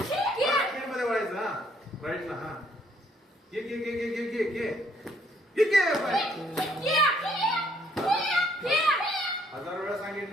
मध्ये वळायचं हा राईटला हा घे घे घे घे घे घे घे घे हजार वेळा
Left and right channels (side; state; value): both; normal; correlation 0.67